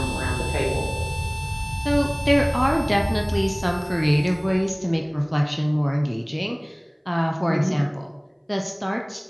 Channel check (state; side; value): identical; both; correlation 1.00